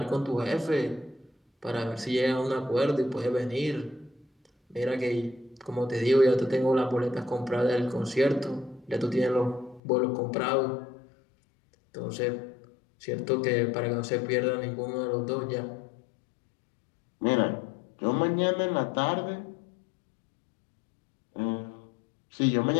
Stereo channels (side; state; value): right; drops out; at 9.8 s